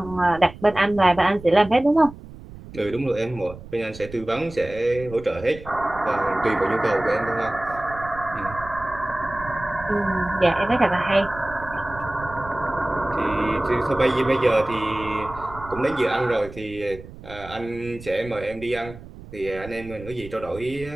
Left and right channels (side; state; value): right; noise; rumble, 16 dB below the sound